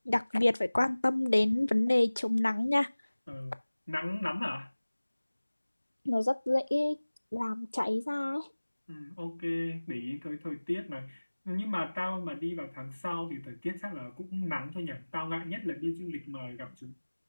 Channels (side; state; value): both; inverted; correlation -1.00